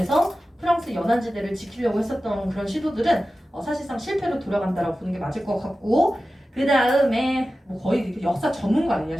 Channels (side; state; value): both; normal; correlation 0.94